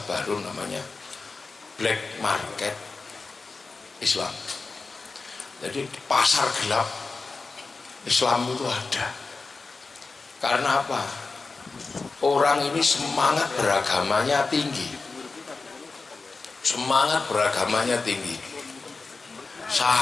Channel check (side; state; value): right; quieter; 4.0 dB